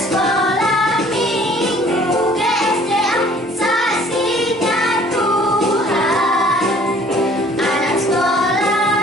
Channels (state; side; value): normal; both; correlation 0.55